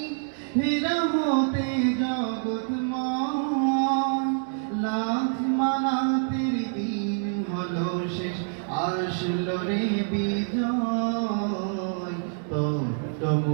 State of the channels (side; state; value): left; silent; digital silence